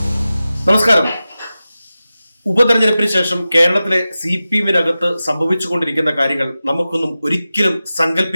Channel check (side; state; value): both; inverted; correlation -0.94